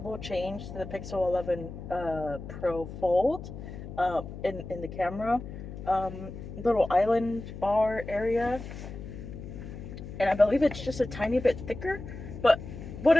change to the Pixel 11 Pro Fold in the camera. Little island bar area, and I believe it's just a tiny bit thicker. But what I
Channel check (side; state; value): left; noise; hum, 11 dB below the sound